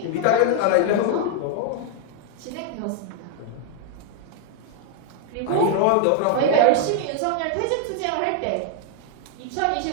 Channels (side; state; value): both; different; correlation 0.00